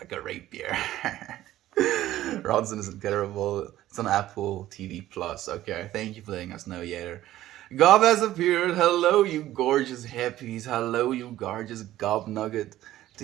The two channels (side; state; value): left; quieter; 14.2 dB